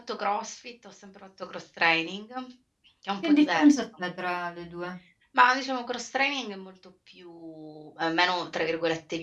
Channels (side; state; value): both; identical; correlation 1.00